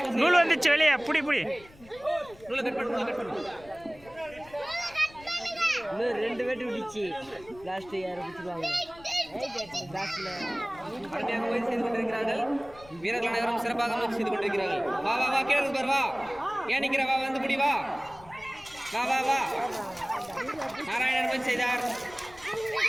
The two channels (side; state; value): left; noise; rumble, 23 dB below the sound